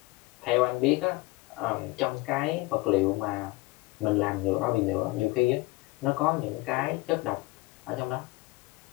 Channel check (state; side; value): quieter; right; 22.0 dB